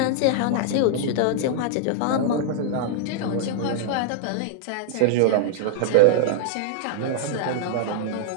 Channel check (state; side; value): different; both; correlation 0.00